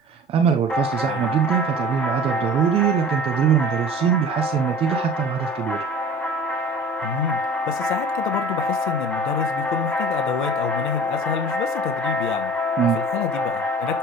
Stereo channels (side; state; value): both; normal; correlation 0.43